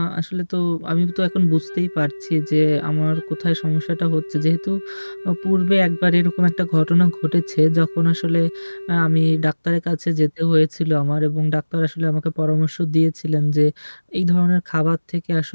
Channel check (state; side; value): inverted; both; correlation -1.00